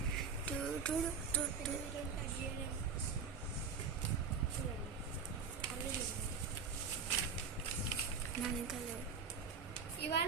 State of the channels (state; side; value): quieter; left; 5.6 dB